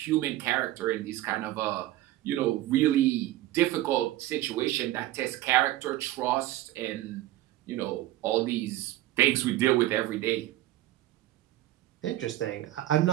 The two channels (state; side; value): quieter; left; 15.3 dB